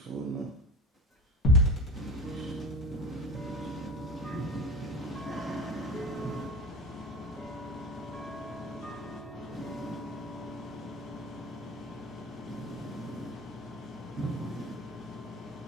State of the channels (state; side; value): normal; both; correlation 0.32